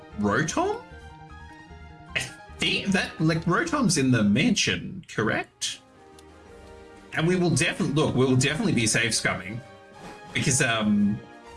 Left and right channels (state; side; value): identical; both; correlation 1.00